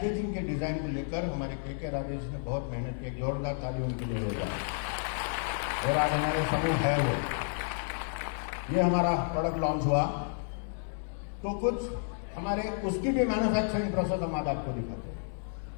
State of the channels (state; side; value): silent; right; digital silence